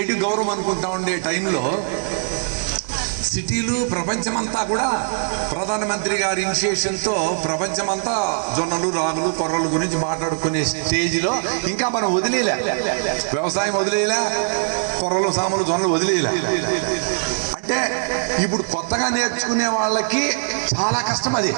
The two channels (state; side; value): silent; left; digital silence